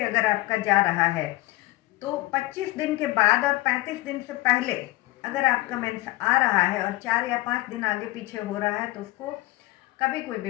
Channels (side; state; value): right; quieter; 19.2 dB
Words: अगर आपका जा रहा है, तो 25 दिन के बाद और 35 दिन से पहले अगर आपका मेंस आ रहा है और 4 या 5 दिन आगे पीछे हो रहा है, तो उसको कभी कोई